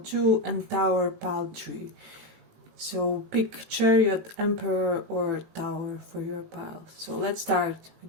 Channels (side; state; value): left; late; 18 ms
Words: and Tower pile 3. So pick Chariot, Emperor or Tower for your pile. So let's start with